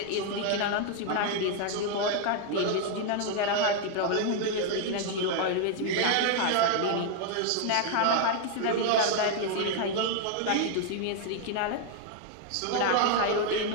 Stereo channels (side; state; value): both; different; correlation 0.00